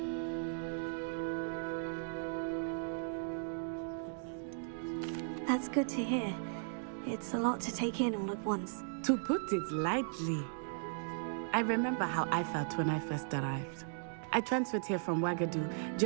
That's good to hear. It's a lot to take in all at once. To put it lightly, I remember how I felt when I first arrived. I transferred here from Ouagadougou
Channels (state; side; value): silent; left; digital silence